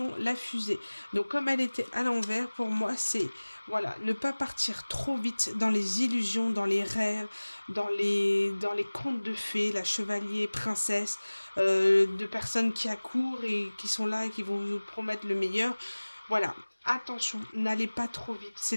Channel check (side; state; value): both; inverted; correlation -1.00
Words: la fusée. Donc comme elle était à l'envers, pour moi c'est, voilà, ne pas partir trop vite dans les illusions, dans les rêves, dans les contes de fées, la chevalier, princesse, de personnes qui accourent et qui sont là et qui vont vous promettre le meilleur. Voilà, attention, n'allez pas trop vite, c'est